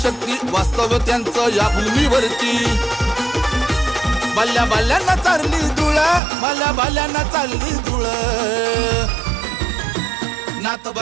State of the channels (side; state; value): left; drops out; at 6.2 s